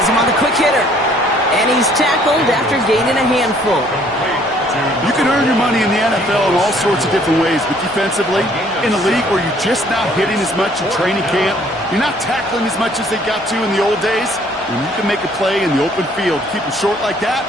him on the quick hitter. And he's tackled after gaining a handful. You can earn your money in the NFL in all sorts of different ways, but defensively, in a league where you're just not hitting as much in training camp, you're not tackling as much as they got to in the old days, when you can make a play in the open field, keep them short like that,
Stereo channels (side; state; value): both; normal; correlation 0.60